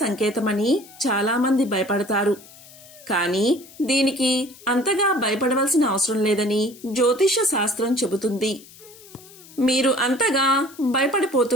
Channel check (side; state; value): left; noise; hiss, 21 dB below the sound